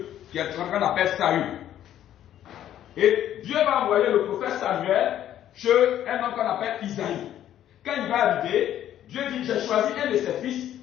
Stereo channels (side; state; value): right; quieter; 11.5 dB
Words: qui est ce qu'on appelle Saül. Et Dieu va envoyer le prophète Samuel chez un homme qu'on appelle Isaïe. Quand il va arriver, Dieu dit, j'ai choisi un de ses